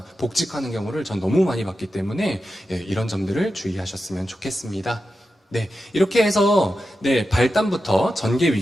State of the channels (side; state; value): both; normal; correlation 0.91